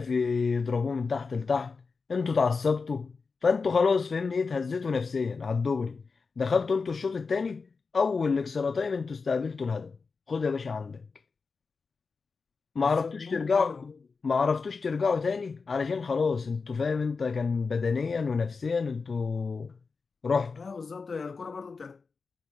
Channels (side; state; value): right; quieter; 4.7 dB